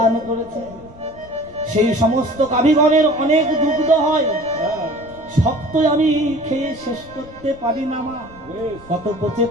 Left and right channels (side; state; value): left; noise; rumble, 22 dB below the sound